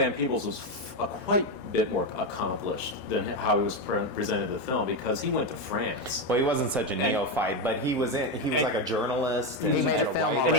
Peebles was quite a bit more accomplished than how he was presented in the film, because he went to France. Well, he wasn't such a neophyte, but he was like a journalist. He made a film And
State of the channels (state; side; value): late; right; 4.4 ms